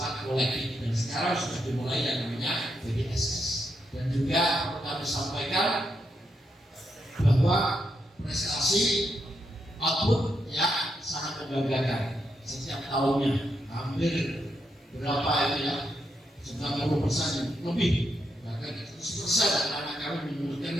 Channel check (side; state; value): both; normal; correlation 0.81